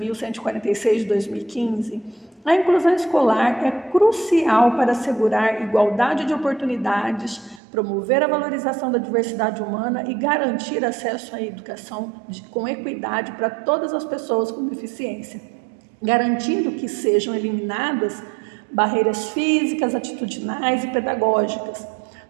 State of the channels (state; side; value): drops out; left; at 7.6 s